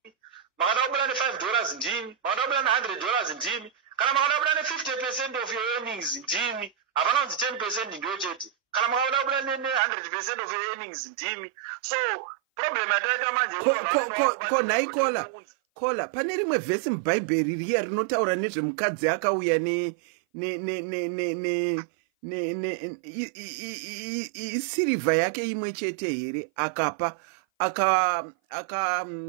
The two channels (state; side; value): drops out; left; at 9.8 s